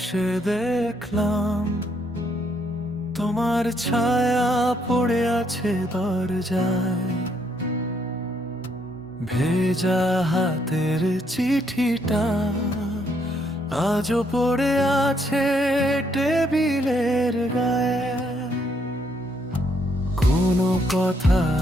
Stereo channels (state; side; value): normal; both; correlation 0.72